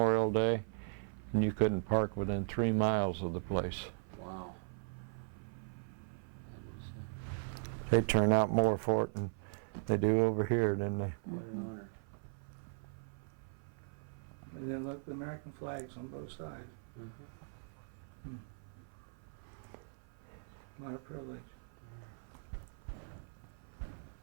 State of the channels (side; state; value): left; silent; 52 dB below the other